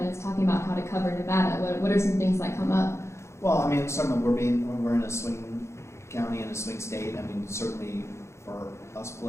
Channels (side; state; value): right; late; 0.13 ms